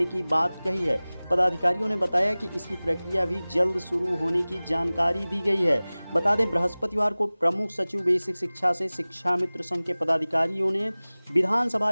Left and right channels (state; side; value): inverted; both; correlation -0.99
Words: की बात कही है। पदाधिकारियों ने बताया कि इसकी प्रक्रिया भी जल्द शुरू होने की जानकारी दी गई है। बता दें, बृहस्पतिवार को प्रमुख सचिव बेसिक शिक्षा से शिक्षा मित्र संघ के पदाधिकारियों ने